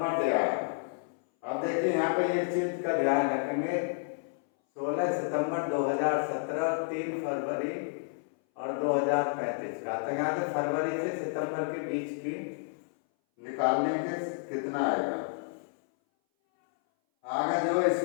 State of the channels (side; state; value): right; silent; 58 dB below the other